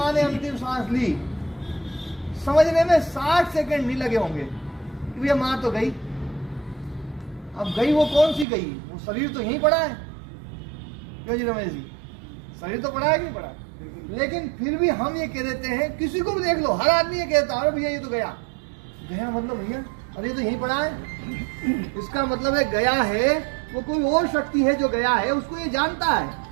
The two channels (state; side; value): drops out; left; at 8.5 s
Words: ने अंतिम सांस ली, समझने में 60 सेकंड नहीं लगे होंगे कि भैया माँ तो गई। अब गई वो कौन सी गई? वो शरीर तो यहीं पड़ा है। क्यों जी रमेश जी, शरीर तो पड़ा है कि नहीं पड़ा? लेकिन फिर भी हम ये कह देते हैं, किसी को भी देख लो, हर आदमी ये कहता है अरे भैया ये तो गया। गया मतलब भैया अरे ये तो यहीं पड़ा है। इसका मतलब है गया है वो कोई और शक्ति है जो गया है, उसको ये जानता है।